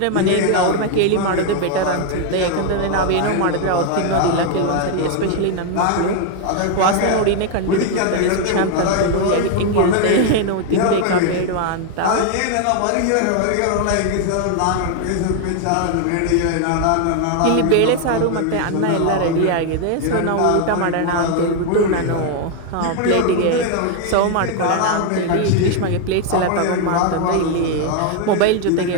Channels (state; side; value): different; both; correlation 0.01